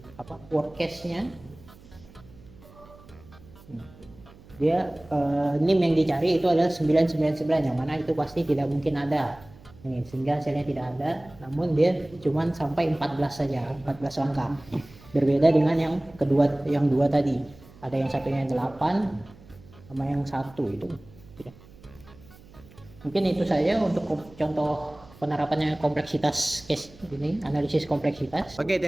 worst case-nya dia NIM yang dicari itu adalah 999, yang mana itu pasti tidak mungkin ada. Sehingga hasilnya tidak ada, namun dia cuma sampai 14 saja, 14 langkah. Berbeda dengan yang kedua, yang 2 tadi. Ada yang satunya 8 sama yang 1 itu. Mungkin itu saja untuk contoh penerapannya kompleksitas case ini, analisis kompleksitas. Oke,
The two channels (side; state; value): right; noise; hum, 23 dB below the sound